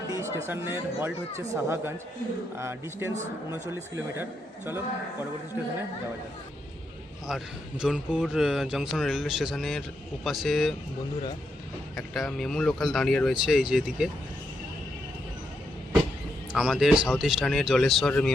স্টেশনের হল্ট হচ্ছে সাহাগঞ্জ, ডিস্টেন্স 39 কিলোমিটার। চলো পরবর্তী স্টেশনে যাওয়া যাক। আর জোনপুর জংশন রেলওয়ে স্টেশনের ওপাশে বন্ধুরা একটা মেমু লোকাল দাঁড়িয়ে রয়েছে, এই যে এদিকে আমাদের সাউথ ইস্টার্নের জলেশ্বর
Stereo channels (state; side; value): normal; both; correlation 0.81